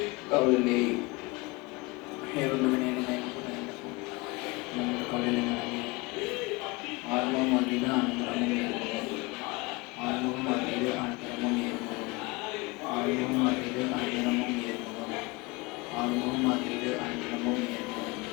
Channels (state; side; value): quieter; right; 24.8 dB